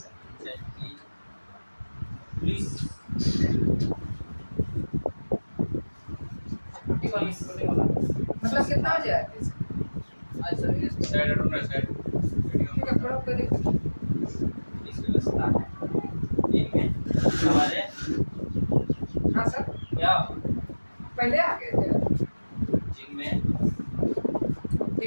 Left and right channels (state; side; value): inverted; both; correlation -1.00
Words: पंचायत की पुलिस मतलब कितना बजे आए थे? आज सवेरे साइड ढूंढना साइड ठीक है थोड़ा पहले पुलिस व्यवस्था है। ठीक है, हमारे हाँ सर क्या पहले आ गए थे जिनमें